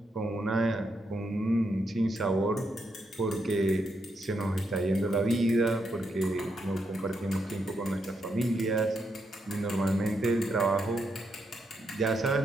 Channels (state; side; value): normal; both; correlation 0.81